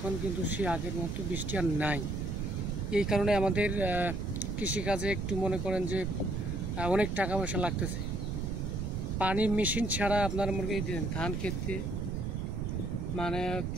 কিন্তু সে আগের মতো বৃষ্টি আর নাই। এই কারণে আমাদের কৃষিকাজে একটু মনে করেন যে অনেক টাকা পয়সা লাগতেছে। পানির মেশিন ছাড়া আপনার মনে দিন ধান খেতে মানে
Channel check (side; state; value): right; noise; rumble, 2 dB below the sound